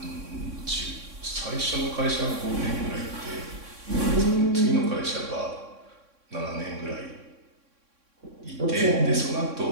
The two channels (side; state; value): left; late; 3.6 ms